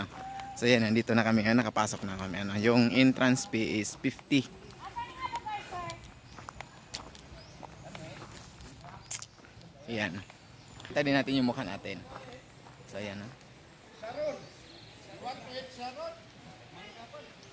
So ayan, nandito na kami, nakapasok na kami. Yung entrance fee is 50. Ayan. Kita din natin yung mukha natin. So ayan, Sharon. Want to eat Sharon?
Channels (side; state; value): both; identical; correlation 1.00